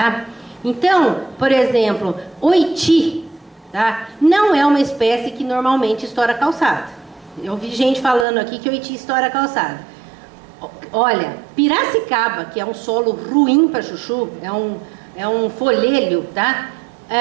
Então, por exemplo, oiti, tá, não é uma espécie que normalmente estoura a calçada. Eu vi gente falando aqui que oiti estoura a calçada. Olha, Piracicaba, que é um solo ruim para chuchu, é um folhelho, tá?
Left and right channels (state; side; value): drops out; left; at 8.2 s